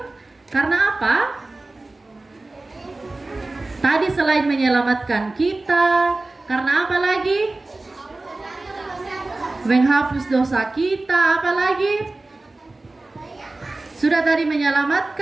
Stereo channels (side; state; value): left; quieter; 3.1 dB